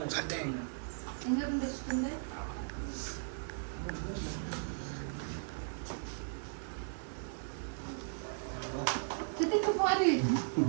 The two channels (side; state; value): left; silent; 53 dB below the other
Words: வச்சிட்டேன். எங்க இருந்து வச்சிட்டீங்க? கிட்டிக்கு பாரு.